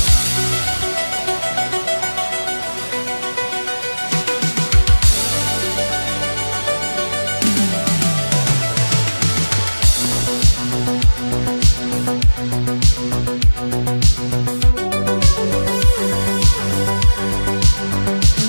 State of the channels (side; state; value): both; inverted; correlation -1.00